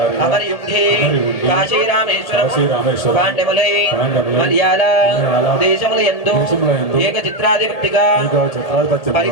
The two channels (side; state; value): right; late; 1.8 ms